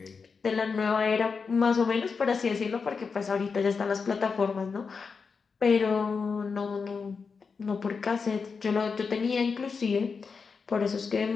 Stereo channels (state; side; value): quieter; right; 5.2 dB